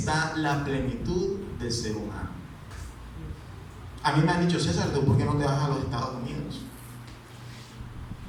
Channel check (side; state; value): both; identical; correlation 1.00